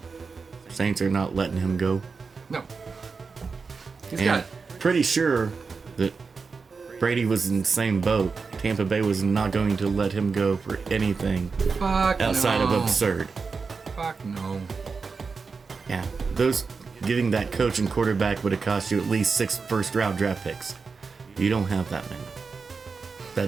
Saints are not letting him go. No. He's And got, pretty sure that Brady was in the same boat. Tampa Bay was not going to let him go for anything fuck outside no. of absurd. Fuck no. Yeah, those getting that coach and quarterback would have cost you at least 6 first-round draft picks. You don't have that many.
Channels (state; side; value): quieter; left; 4.8 dB